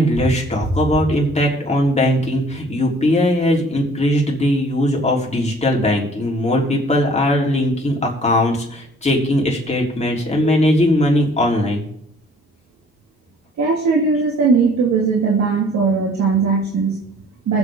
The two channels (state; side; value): normal; both; correlation 0.54